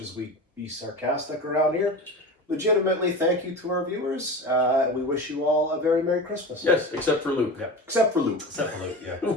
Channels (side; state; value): both; normal; correlation 0.29